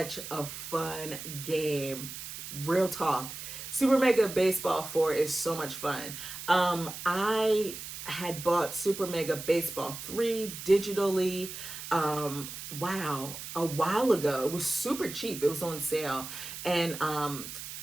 a fun game. Real talk. Super Mega Baseball 4 is so much fun. I had bought Super Mega Baseball 3 digitally. Wow, a while ago. It was super cheap. It was on sale. And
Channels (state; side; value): noise; right; hiss, 9 dB below the sound